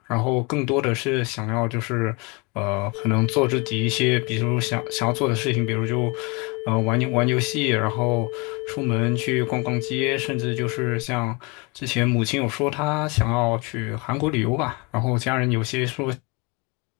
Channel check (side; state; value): right; quieter; 28.6 dB